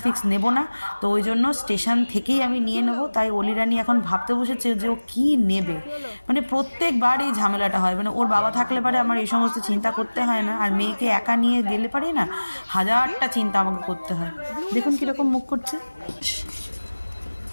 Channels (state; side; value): inverted; both; correlation -1.00